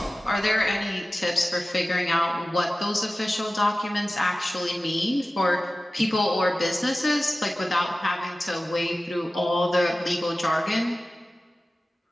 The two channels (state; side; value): normal; both; correlation 0.96